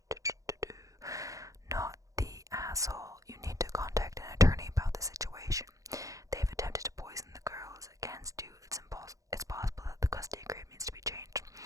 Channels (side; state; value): left; late; 0.16 ms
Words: Not the asshole. You need to contact an attorney about the situation. They've attempted to poison the girls against you. It's possible that the custody agreement needs to be changed.